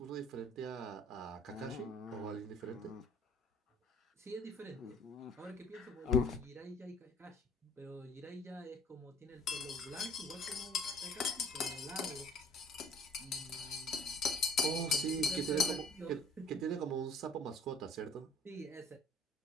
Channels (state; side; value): normal; both; correlation 0.53